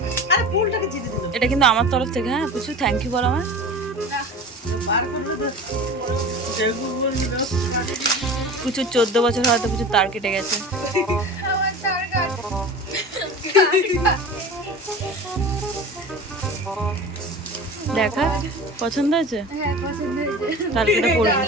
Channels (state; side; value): normal; both; correlation 0.35